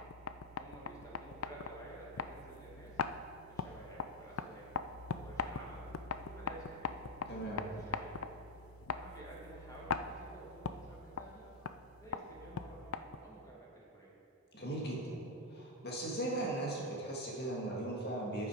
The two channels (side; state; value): both; normal; correlation 0.06